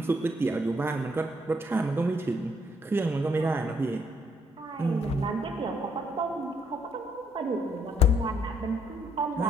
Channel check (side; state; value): both; normal; correlation 0.71